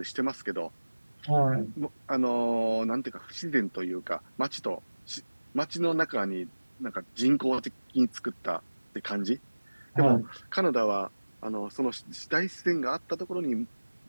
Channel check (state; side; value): inverted; both; correlation -1.00